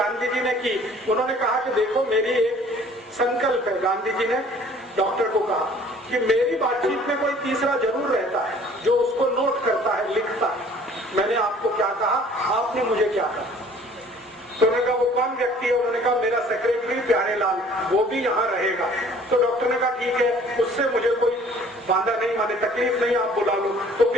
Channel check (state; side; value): normal; both; correlation 0.53